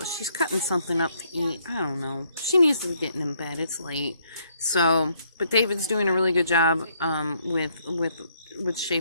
She's cutting something up to eat. I don't know. She needs to be getting in bed. It's late. So, but David's doing a really good job with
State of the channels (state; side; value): inverted; both; correlation -0.70